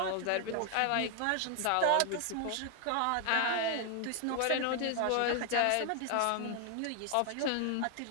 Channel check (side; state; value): both; different; correlation 0.00